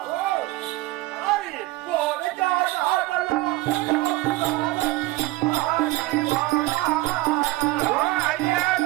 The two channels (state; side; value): quieter; left; 19.0 dB